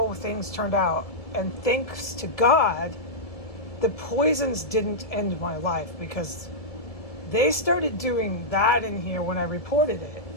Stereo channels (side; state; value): right; late; 1.7 ms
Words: things turned out. And thanks to God, the poisons didn't end my life, because they started doing that in here when I reported it,